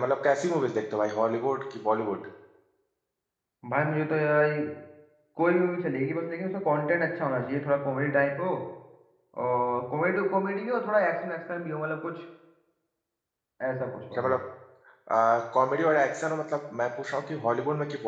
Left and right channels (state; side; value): identical; both; correlation 1.00